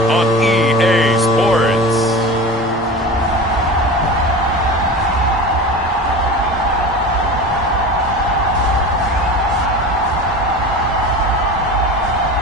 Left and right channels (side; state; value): both; normal; correlation 0.31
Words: on EA Sports.